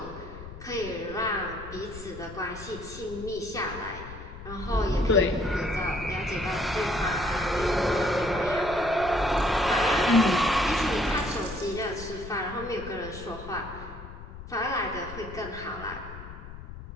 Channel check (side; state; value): left; noise; rumble, 13 dB below the sound